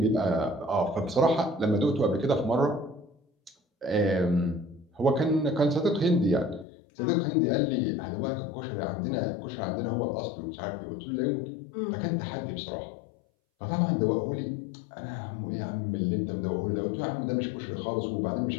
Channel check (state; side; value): drops out; right; at 6.7 s